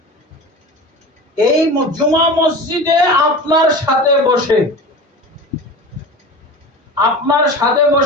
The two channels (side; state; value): both; normal; correlation 0.33